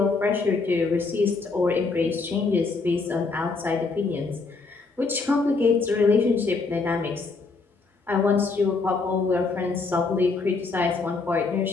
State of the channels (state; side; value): quieter; right; 4.1 dB